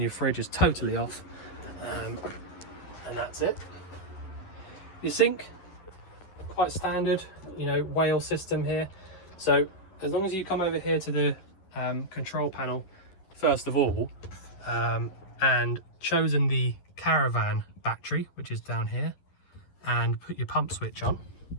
your fridge is totally off, and that's it. Your sink, quite standard, you know, whale system here. So as long as you come over here to the control panel first of all, and chosen the caravan battery, which is down here, and put your pump switch on.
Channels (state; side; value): late; right; 11 ms